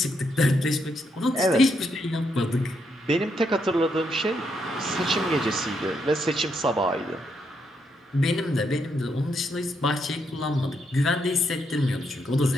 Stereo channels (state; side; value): normal; both; correlation 0.78